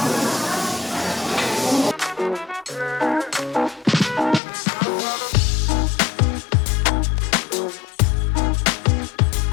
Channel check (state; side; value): drops out; right; at 4.4 s